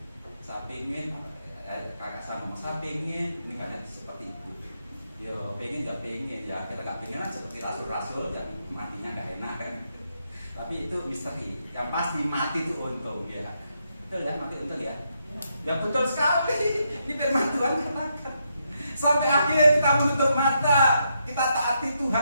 Saya pengen, kakak saya ngomong, saya pengen ini banyak seperti itu. Yo pengen gak pengen ya, kita gak pengen aja seperti rasul-rasul yang matinya gak enak kan. Tapi itu misteri. Yang pasti mati itu untung ya. Betul ya, mati untung ya. Ya betul sekali. Ini firman Tuhan katakan. Sampai akhir kita menutup mata, kita taati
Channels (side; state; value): both; inverted; correlation -0.79